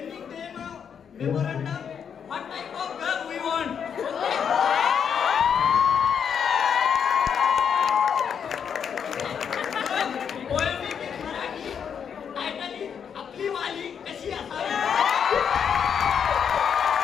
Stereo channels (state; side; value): quieter; right; 7.5 dB